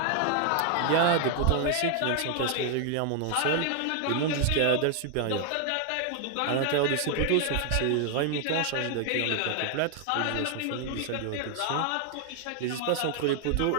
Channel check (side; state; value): both; different; correlation 0.00